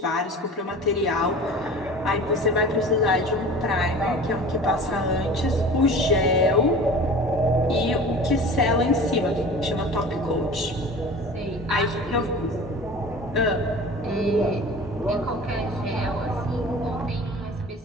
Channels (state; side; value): normal; both; correlation 0.39